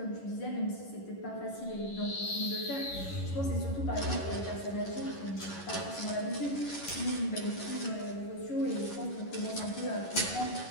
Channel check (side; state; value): right; late; 11 ms